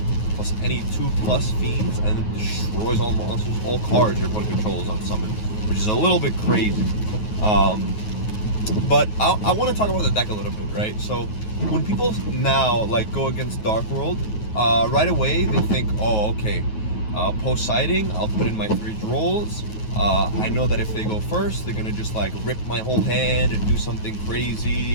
plus any 2+ fiends, and it destroys all monsters, all cards your opponent controls on summon, which is a little bit crazy. But I want to talk about the deck a little bit, right? So when people now like go against Dark World, right away they think, oh, okay, post sighting, I'll put in my 3 drolls. I know that if they go first, they're gonna just like rip my whole hand and do something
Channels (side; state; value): right; late; 9.4 ms